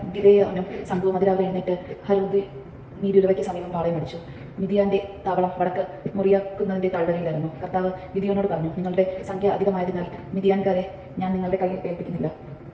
ഗിദെയോനും സംഘവും അതിരാവിലെ എഴുന്നേറ്റ് ഹരോദ് നീരുറവയ്ക്ക് സമീപം പാളയമടിച്ചു. മിദ്യാന്റെ താവളം വടക്ക് മുറിയാക്കുന്നതിന്റെ താഴ്വരയിലായിരുന്നു. കർത്താവ് ഗിദെയോനോട് പറഞ്ഞു, നിങ്ങളുടെ സംഖ്യ അധികമായതിനാൽ മിദ്യാൻകാരെ ഞാൻ നിങ്ങളുടെ കയ്യിൽ ഏൽപ്പിക്കുന്നില്ല.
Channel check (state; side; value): identical; both; correlation 1.00